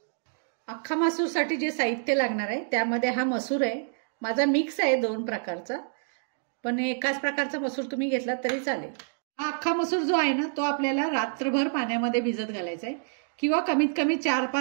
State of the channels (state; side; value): silent; left; digital silence